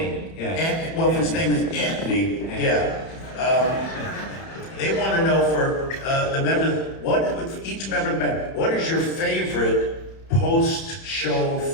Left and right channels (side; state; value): right; late; 31 ms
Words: yeah. well, if his name is Anthony, yeah. They want to know for the members, each member of the band, what is your favorite post-show